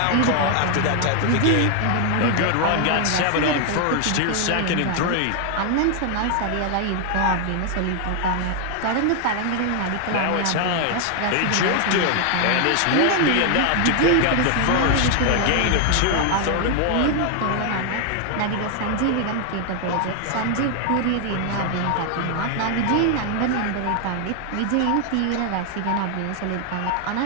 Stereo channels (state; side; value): different; both; correlation 0.00